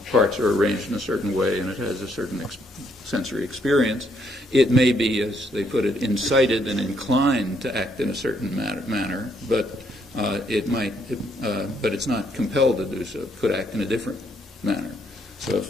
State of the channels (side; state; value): both; normal; correlation 0.72